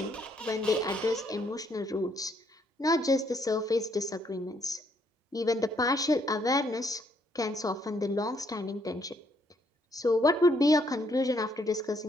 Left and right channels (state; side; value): normal; both; correlation 0.71